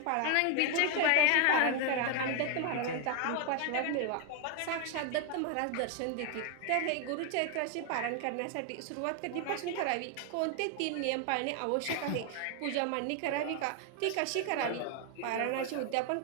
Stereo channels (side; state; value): both; different; correlation 0.01